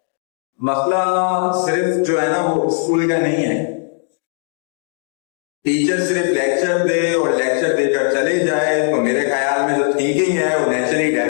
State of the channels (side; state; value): right; silent; 57 dB below the other